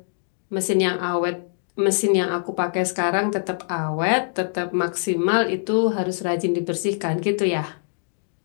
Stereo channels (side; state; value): right; silent; digital silence